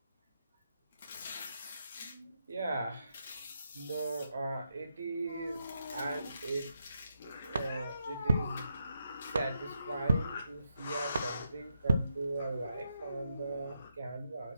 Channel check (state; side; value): inverted; both; correlation -0.82